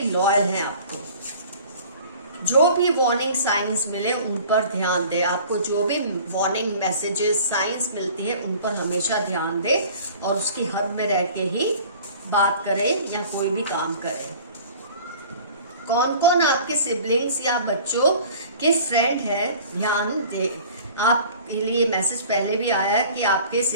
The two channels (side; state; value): both; inverted; correlation -0.46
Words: लॉयल है आपको। जो भी वार्निंग साइंस मिले उन पर ध्यान दे, आपको जो भी वार्निंग मैसेजेस साइंस मिलती है उन पर हमेशा ध्यान दे और उसकी हद में रह के ही बात करें या कोई भी काम करें। कौन कौन आपके सिबलिंग्स या बच्चों के फ्रेंड है ध्यान दे। आपके लिए मैसेज पहले भी आया है कि आपके